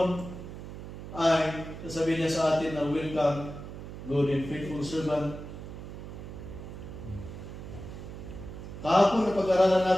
ay sasabihin niya sa atin na welcome, good and faithful servant. Kahapon na pag-aralan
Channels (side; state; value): right; noise; hum, 11 dB below the sound